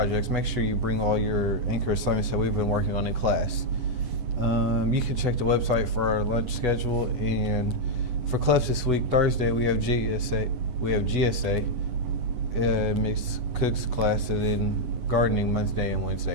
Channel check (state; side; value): late; left; 9.6 ms